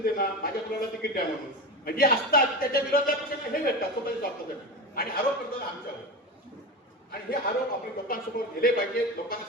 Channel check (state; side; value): normal; both; correlation 0.24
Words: माझ्या मुलाला तिकीट द्या म्हणून, म्हणजे असतात त्याच्या विरोधात हे भेटतात स्वतःच्या स्वार्थासाठी आणि आरोप करतात आमच्यावर. आणि हे आरोप आपण लोकांसमोर गेले पाहिजे, लोकांना